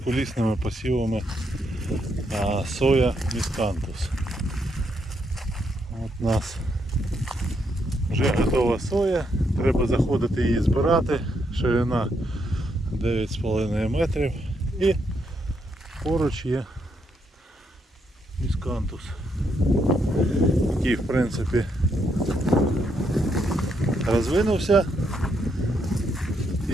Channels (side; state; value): both; normal; correlation 0.77